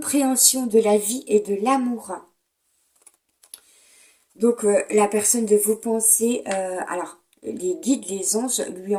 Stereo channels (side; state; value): both; identical; correlation 1.00